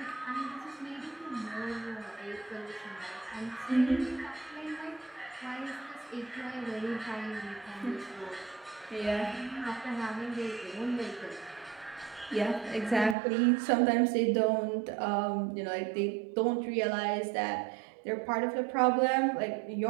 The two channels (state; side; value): drops out; left; at 13.2 s